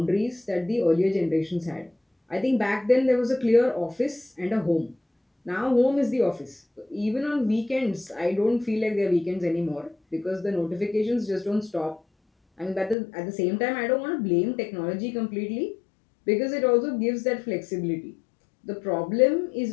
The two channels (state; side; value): drops out; right; at 13.0 s